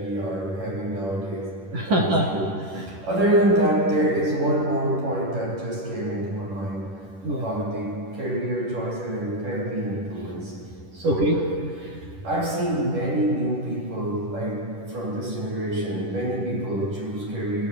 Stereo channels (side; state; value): left; late; 10 ms